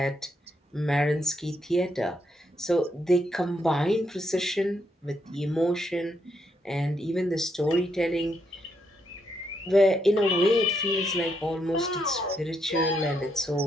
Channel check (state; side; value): normal; both; correlation 0.78